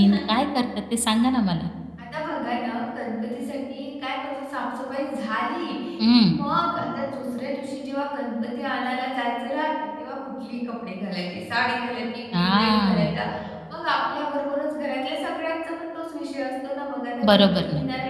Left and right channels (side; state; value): both; identical; correlation 1.00